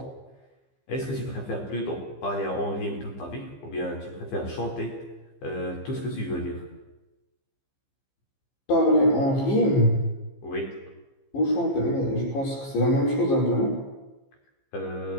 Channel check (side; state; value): right; late; 15 ms